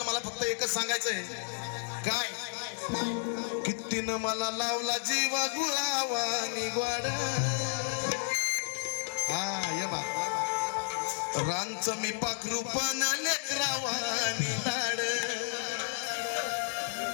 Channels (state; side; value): silent; right; digital silence